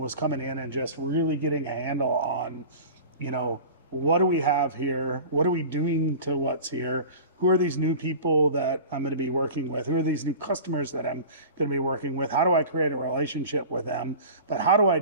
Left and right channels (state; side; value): inverted; both; correlation -0.37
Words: coming in and just really getting a handle on, what do we have here? What are we doing to what's here? Who are these new people that I'm going to be working with? Who are these new customers that I'm going to be working with? How do I create a relationship with them? But how do I